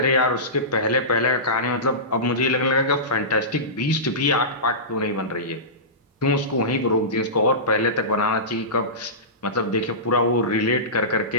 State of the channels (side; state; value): both; normal; correlation -0.20